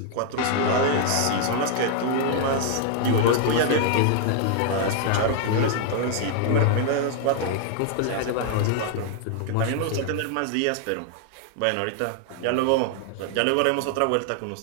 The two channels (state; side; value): different; both; correlation 0.00